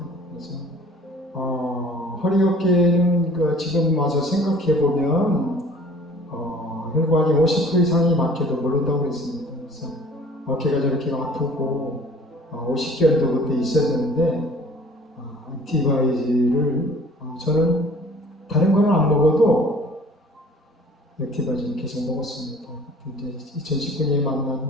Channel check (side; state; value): both; normal; correlation 0.50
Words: 그래서 허리 어깨는 지금 와서 생각해 보면 혈관이 50% 이상이 막혀도 모른다고 했습니다. 그래서 어깨가 저렇게 아프고 50견도 그때 있었는데 액티바이즈를 저는 다른 거는 안 먹어도 액티바이즈를 계속 먹었습니다. 이제 2019년에 만난